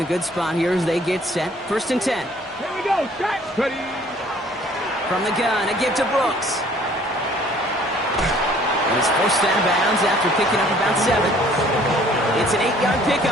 a good spot here as they get set. 1st and 10. Here we go. Set. Ready. From the gun, a give to Brooks. And he's forced out of bounds after picking up about 7. It's an 8-yard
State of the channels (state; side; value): normal; both; correlation 0.56